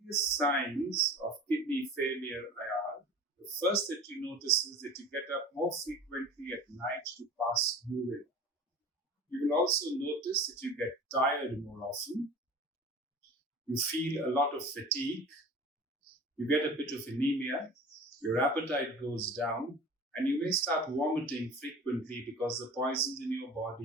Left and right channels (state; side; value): normal; both; correlation 0.39